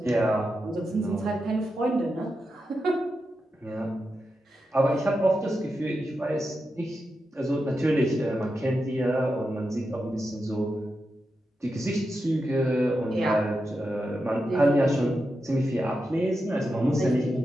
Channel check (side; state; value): both; normal; correlation 0.88